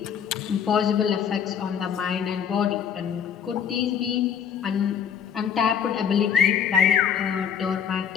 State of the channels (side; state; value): right; quieter; 7.9 dB